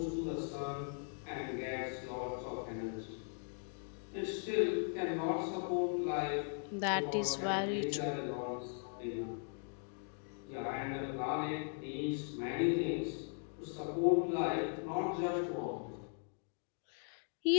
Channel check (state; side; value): silent; right; 52 dB below the other